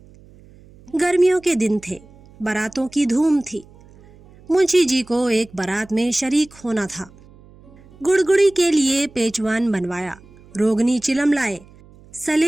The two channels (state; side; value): noise; right; hum, 25 dB below the sound